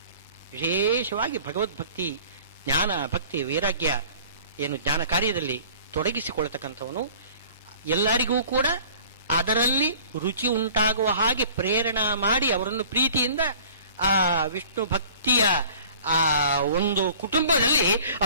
ವಿಶೇಷವಾಗಿ ಭಗವದ್ಭಕ್ತಿ, ಜ್ಞಾನ, ಭಕ್ತಿ, ವೈರಾಗ್ಯ ಏನು ಜ್ಞಾನ ಕಾರ್ಯದಲ್ಲಿ ತೊಡಗಿಸಿಕೊಳ್ಳತಕ್ಕಂಥವನು ಎಲ್ಲರಿಗೂ ಕೂಡ ಅದರಲ್ಲಿ ರುಚಿ ಉಂಟಾಗುವ ಹಾಗೆ ಪ್ರೇರಣಾ ಮಾಡಿ ಅವರನ್ನು ಪ್ರೀತಿಯಿಂದ ಆ ವಿಷ್ಣು ಭಕ್ತಿಯ ಆ ಒಂದು ಕುಟುಂಬದಲ್ಲಿ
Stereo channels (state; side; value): inverted; both; correlation -0.48